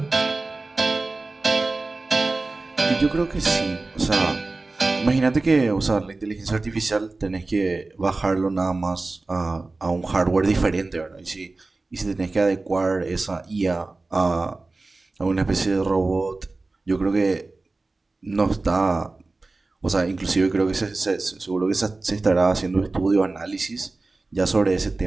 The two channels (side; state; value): left; quieter; 3.4 dB